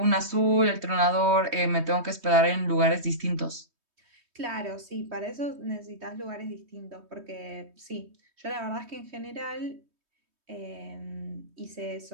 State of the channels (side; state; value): left; late; 3.2 ms